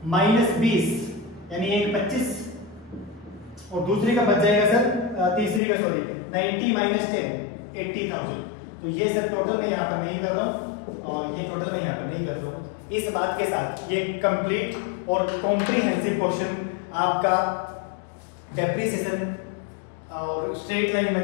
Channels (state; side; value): drops out; right; at 5.6 s